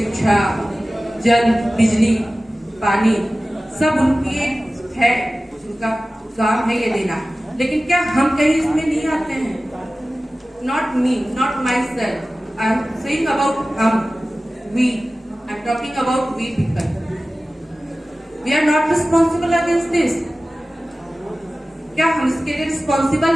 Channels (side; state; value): both; normal; correlation 0.96